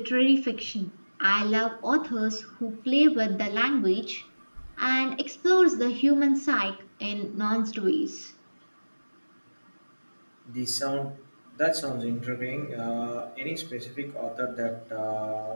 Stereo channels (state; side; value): inverted; both; correlation -1.00